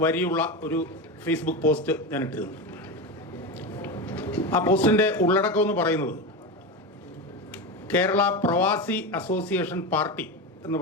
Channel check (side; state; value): both; normal; correlation 0.19